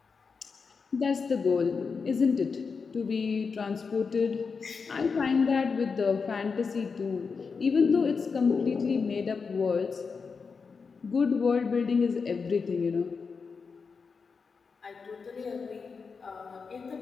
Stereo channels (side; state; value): right; quieter; 5.2 dB